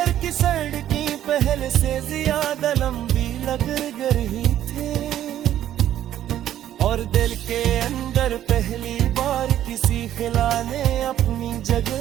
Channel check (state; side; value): quieter; left; 11.7 dB